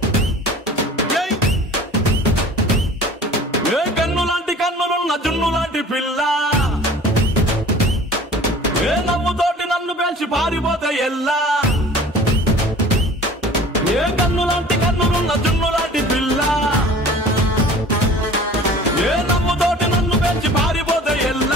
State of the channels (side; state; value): both; normal; correlation 0.45